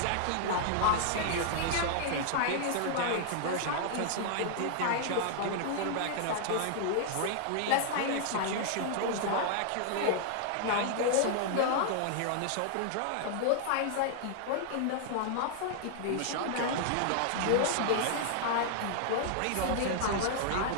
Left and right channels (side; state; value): both; different; correlation -0.01